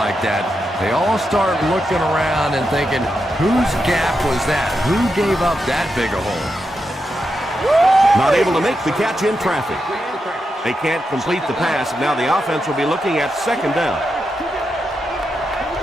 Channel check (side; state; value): both; normal; correlation 0.86